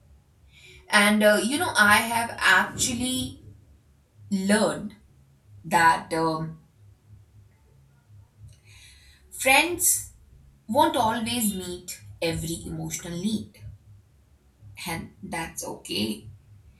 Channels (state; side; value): identical; both; correlation 1.00